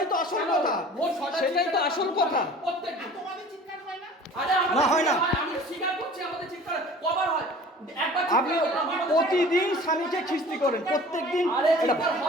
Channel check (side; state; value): both; normal; correlation 0.45